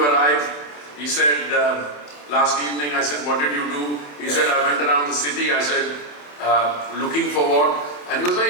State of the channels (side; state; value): right; late; 27 ms